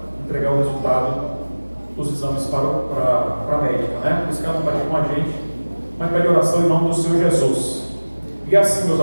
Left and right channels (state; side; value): inverted; both; correlation -1.00